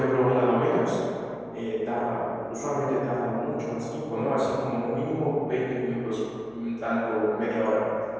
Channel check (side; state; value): left; noise; hum, 30 dB below the sound